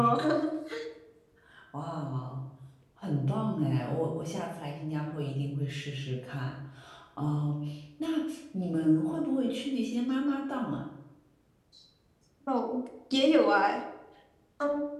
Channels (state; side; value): identical; both; correlation 1.00